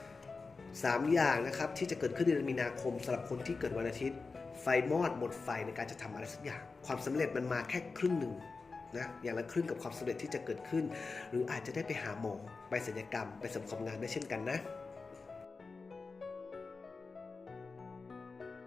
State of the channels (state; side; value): quieter; right; 4.2 dB